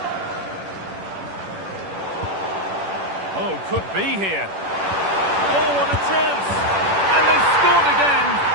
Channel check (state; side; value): late; left; 10 ms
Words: Oh, could be here. Oh, what a chance. And they've scored again.